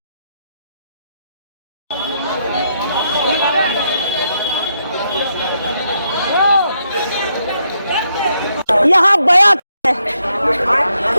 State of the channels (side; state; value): both; inverted; correlation -0.78